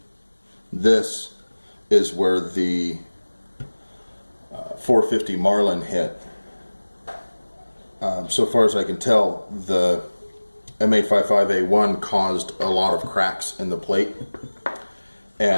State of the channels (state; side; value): inverted; both; correlation -1.00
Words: This is where the 450 Marlin hit. So far as I can tell, the M855A1 caused a lot of cracks in the plate,